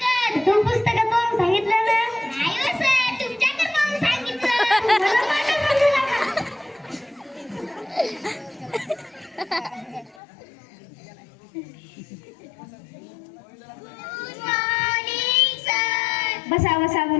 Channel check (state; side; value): drops out; right; at 10.2 s